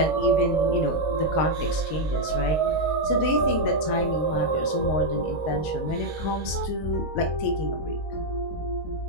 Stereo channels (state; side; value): late; right; 19 ms